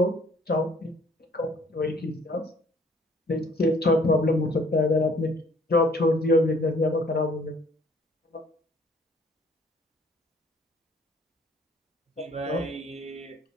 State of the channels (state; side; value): normal; both; correlation 0.59